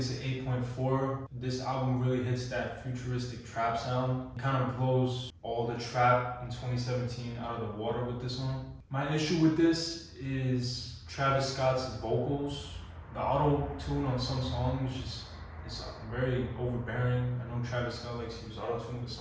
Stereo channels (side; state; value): both; identical; correlation 1.00